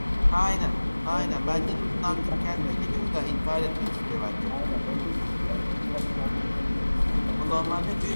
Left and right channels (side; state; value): both; inverted; correlation -1.00